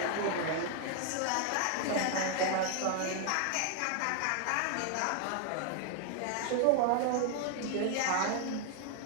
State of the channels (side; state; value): both; different; correlation 0.00